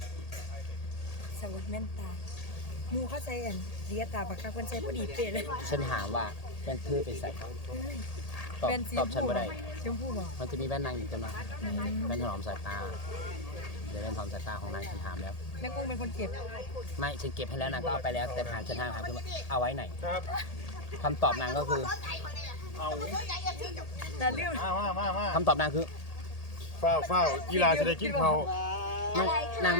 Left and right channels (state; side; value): late; right; 1.8 ms